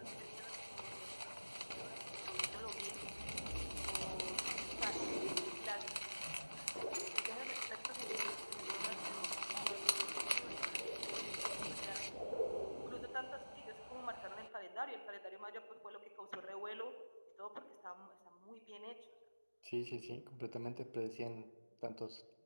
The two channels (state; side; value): inverted; both; correlation -1.00